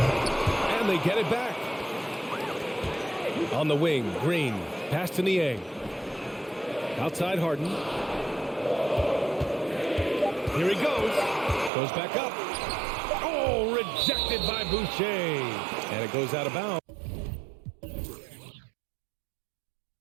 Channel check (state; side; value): drops out; left; at 11.7 s